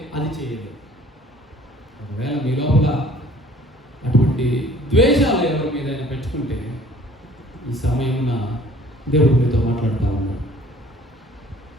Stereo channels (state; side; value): normal; both; correlation 0.53